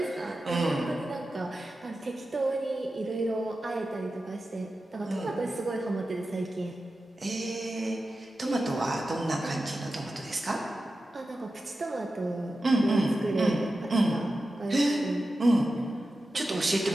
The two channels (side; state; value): both; normal; correlation 0.92